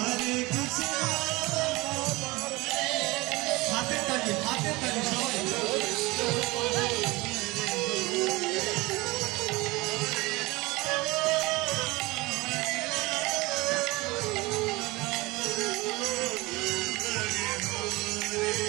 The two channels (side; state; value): left; quieter; 22.6 dB